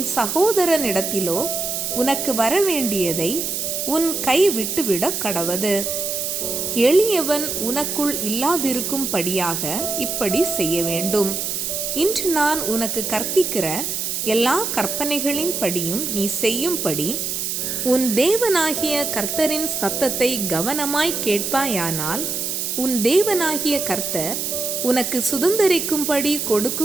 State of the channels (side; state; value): right; noise; hiss, 2 dB below the sound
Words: சகோதரனிடத்திலோ உனக்கு வரவேண்டியதை உன் கை விட்டுவிட கடவது. எளியவன் உனக்குள் இல்லாதிருக்கும்படியாக இப்படி செய்ய வேண்டும். இன்று நான் உனக்கு கற்பிக்கிற எல்லா கற்பனைகளின் படியும் நீ செய்யும்படி உன் தேவனாகிய கர்த்தரின் சத்தத்தை கவனமாய் கேட்பாயானால், உன் தேவனாகிய கர்த்தர் உனக்கு சுதந்தரிக்கும்படி